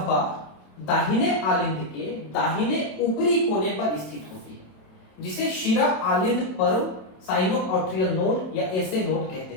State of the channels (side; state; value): right; late; 27 ms